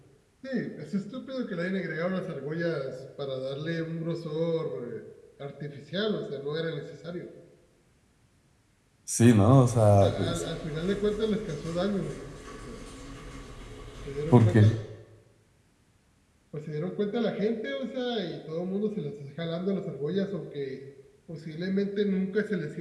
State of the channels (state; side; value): identical; both; correlation 1.00